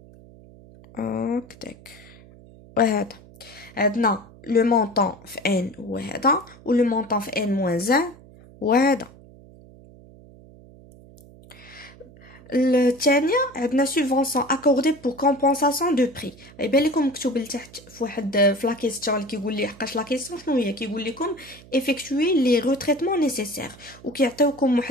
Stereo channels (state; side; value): noise; right; hum, 22 dB below the sound